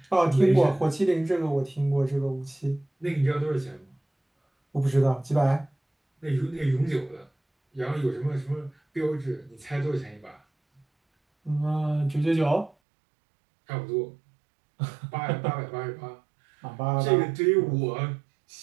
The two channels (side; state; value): left; drops out; at 12.8 s